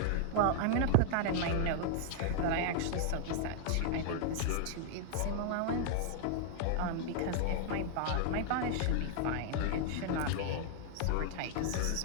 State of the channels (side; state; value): both; different; correlation -0.01